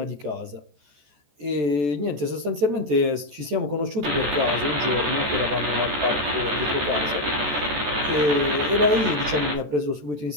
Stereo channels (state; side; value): late; left; 14 ms